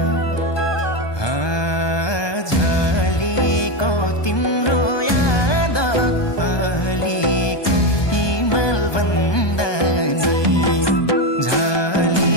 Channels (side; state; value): right; late; 1.2 ms